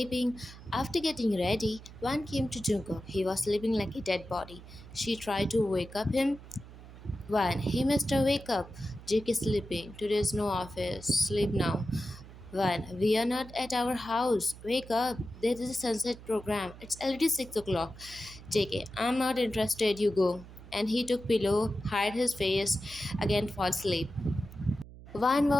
After getting ready, one came to Jungkook. He was sleeping like a dead body. She tried to wake up him. One, hey Mister, wake up. Jake is sleeping. Today is no office. Sleep now. One, we are not at our house. Wake up. There is a sunset program. It's already 6 o'clock. JK, I'm not interested. You go. And he took pillow, hid his face, again fall asleep. One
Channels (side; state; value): right; noise; hum, 17 dB below the sound